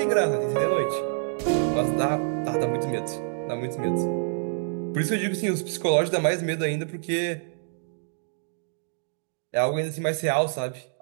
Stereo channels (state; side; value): silent; left; digital silence